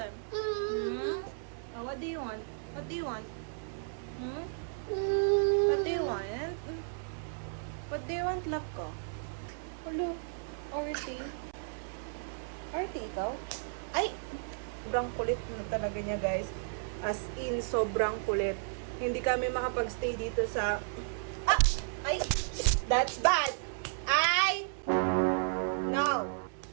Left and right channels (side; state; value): left; silent; 55 dB below the other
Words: Oh, what do you want? What do you want? What do you want? What do you want, love ko? Hello, Orty. Orty, ikaw? Ay! Sobrang kulit na talaga niya, guys. As in, sobrang kulit. Hindi kami makapag-stay dito sa... Ah! Ay! That's bad! Ay! No!